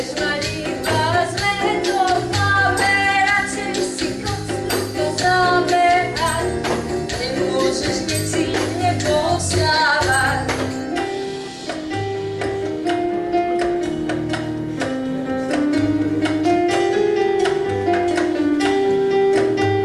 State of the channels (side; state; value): both; identical; correlation 1.00